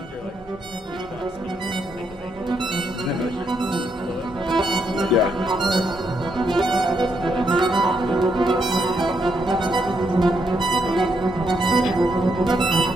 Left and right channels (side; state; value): both; normal; correlation 0.77